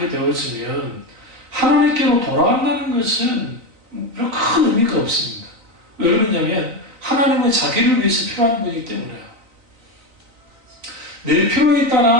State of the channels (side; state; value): left; late; 3.9 ms